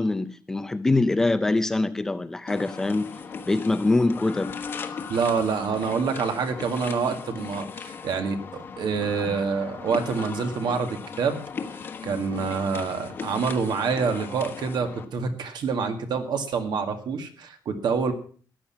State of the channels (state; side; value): normal; both; correlation 0.71